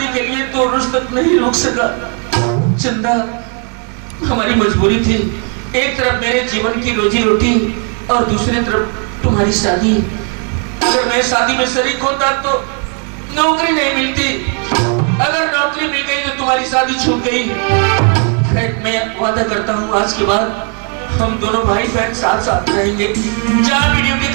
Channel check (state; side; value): quieter; left; 39.6 dB